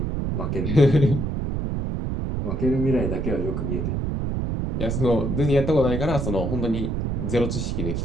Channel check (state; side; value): noise; right; rumble, 1 dB below the sound